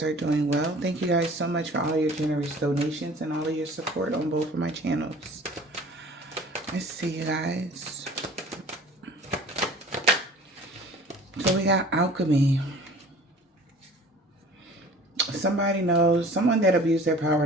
are doing well. Thank you guys so much for all your generous donations and all of your support on both of my channels. Let's see, you guys. So we got alchemy. Somebody knows, someone that abused their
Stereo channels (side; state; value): both; normal; correlation 0.46